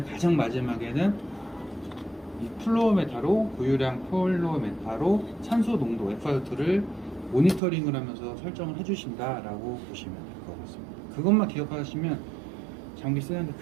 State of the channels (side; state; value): left; drops out; at 7.6 s